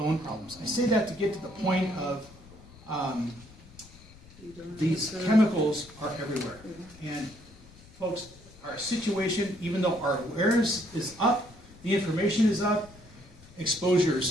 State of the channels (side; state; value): left; noise; rumble, 22 dB below the sound